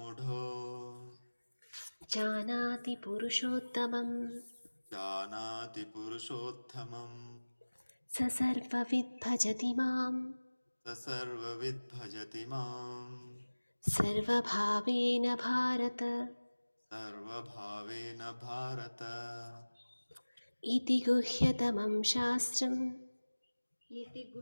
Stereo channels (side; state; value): both; inverted; correlation -1.00